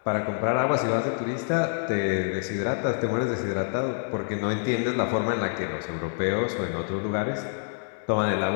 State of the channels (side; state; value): right; silent; digital silence